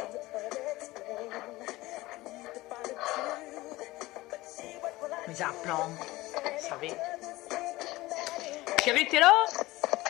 Mes implants, vous savez. Chérie, t'es là?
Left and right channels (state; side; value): quieter; right; 19.1 dB